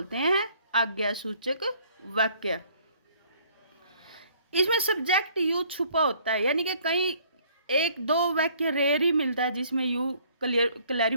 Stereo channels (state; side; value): inverted; both; correlation -0.59